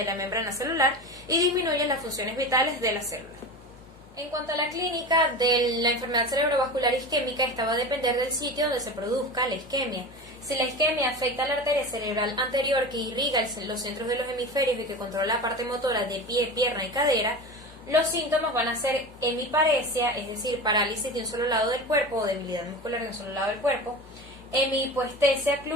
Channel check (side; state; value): both; normal; correlation 0.29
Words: la membrana celular y disminuye las funciones vitales de la célula. En cuanto a la clínica de la enfermedad cerebrovascular isquémica, esta va a depender del sitio donde se produzca la isquemia. Si la isquemia afecta a la arteria cerebral anterior que irriga los centros de los hemisferios y que controla la parte motora de pie, pierna y cadera, los síntomas van a ser hemiparesia, es decir, parálisis de un solo lado del cuerpo o debilidad muscular de un solo lado del cuerpo; hemihipoestesia